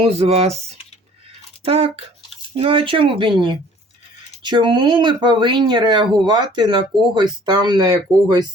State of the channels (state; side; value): normal; both; correlation 0.53